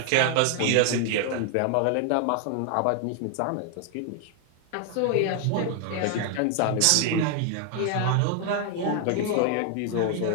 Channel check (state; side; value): different; both; correlation 0.00